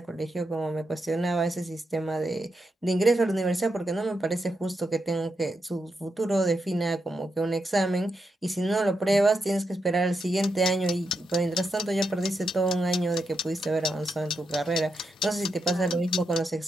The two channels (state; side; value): normal; both; correlation 0.84